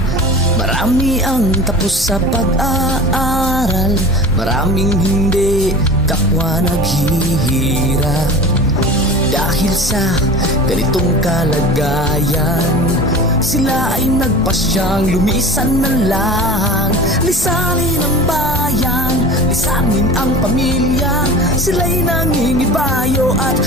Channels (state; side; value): normal; both; correlation 0.37